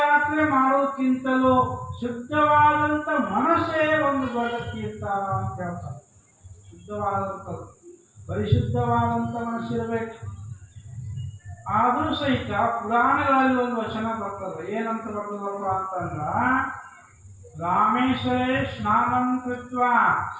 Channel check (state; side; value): identical; both; correlation 1.00